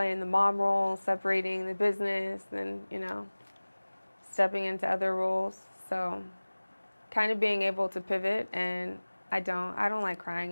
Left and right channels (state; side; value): inverted; both; correlation -1.00